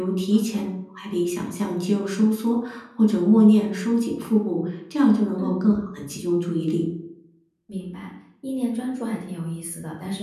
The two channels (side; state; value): both; identical; correlation 1.00